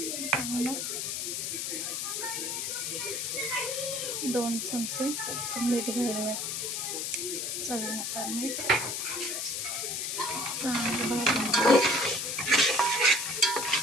आणि मग 2 चमचे मीठ घालूया, चवीनुसार मीठ. चांगलं भाजून घेऊया.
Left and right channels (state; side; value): noise; left; hiss, 2 dB below the sound